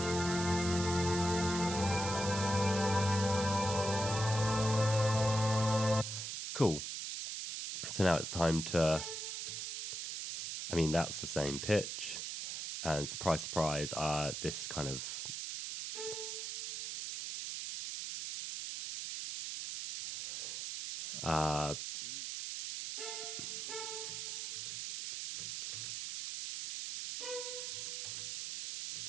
Cool. So now it's time to, I mean, that's the same pitch, and surprise, surprise, this kind of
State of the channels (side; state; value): right; noise; hiss, 5 dB below the sound